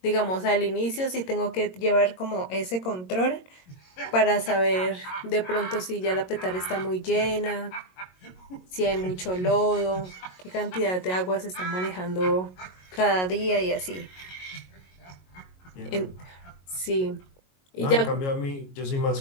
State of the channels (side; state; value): right; late; 22 ms